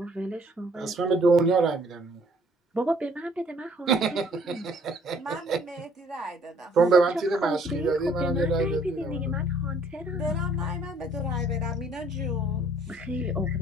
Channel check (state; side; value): normal; both; correlation 0.60